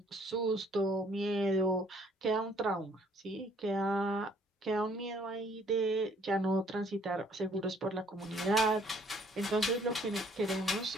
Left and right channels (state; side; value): normal; both; correlation 0.62